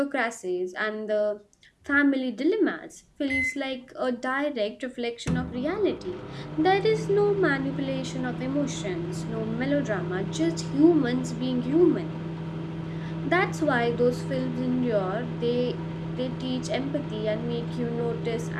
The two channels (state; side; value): identical; both; correlation 1.00